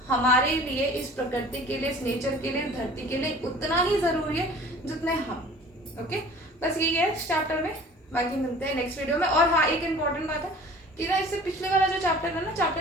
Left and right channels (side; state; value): both; normal; correlation 0.46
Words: हमारे लिए, इस प्रकृति के लिए, इस नेचर के लिए, धरती के लिए उतना ही जरूरी है जितने हम। ओके, बस यही है इस चैप्टर में, बाकी मिलते हैं नेक्स्ट वीडियो में। और हाँ, एक इम्पॉर्टेंट बात है कि ना, इससे पिछले वाला जो चैप्टर है ना,